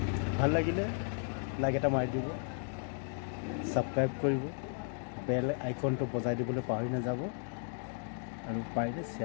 ভাল লাগিলে লাইক এটা মাৰি দিব, ছাবস্ক্ৰাইব কৰিব, বেল আইকনটো বজাই দিবলৈ পাহৰি নাযাব আৰু পাৰিলে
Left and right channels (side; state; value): right; silent; 55 dB below the other